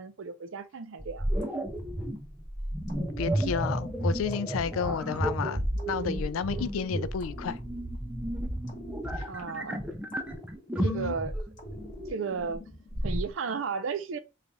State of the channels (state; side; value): normal; both; correlation 0.47